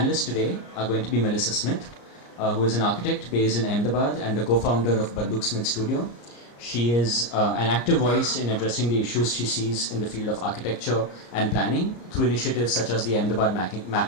today are going to be Melissa Smith, who is an architect based in Ahmedabad and the co-founder of Banduksmith Studio. She is an active voice in addressing the issues she sees in the field of architecture and planning through initiatives such as the Ahmedabad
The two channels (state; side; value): late; right; 34 ms